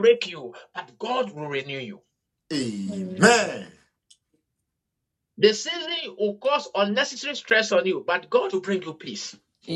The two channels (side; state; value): both; identical; correlation 1.00